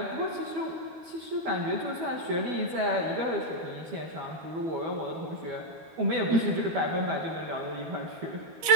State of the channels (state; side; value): late; left; 12 ms